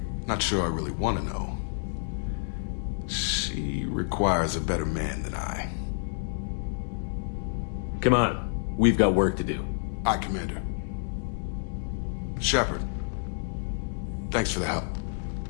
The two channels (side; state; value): right; silent; digital silence